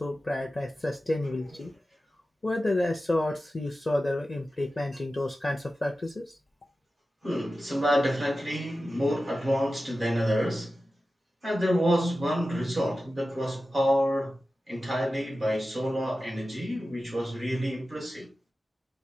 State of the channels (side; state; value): both; normal; correlation 0.94